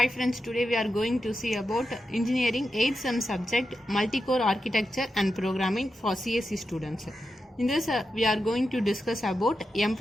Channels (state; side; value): normal; both; correlation 0.89